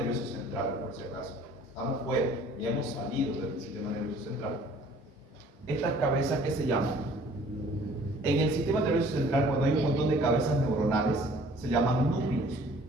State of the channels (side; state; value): both; normal; correlation 0.54